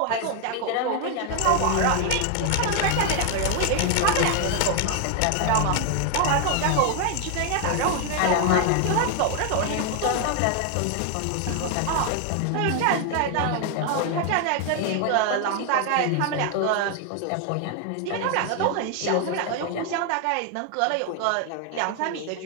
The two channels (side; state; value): both; different; correlation 0.00